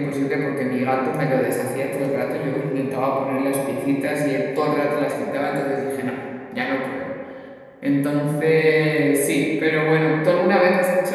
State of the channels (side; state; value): both; identical; correlation 1.00